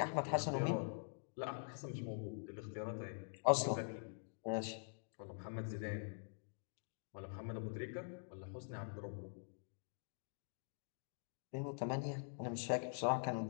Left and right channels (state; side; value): silent; right; digital silence